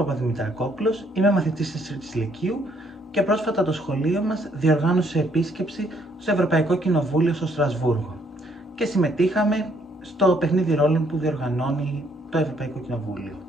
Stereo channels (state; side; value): normal; both; correlation 0.68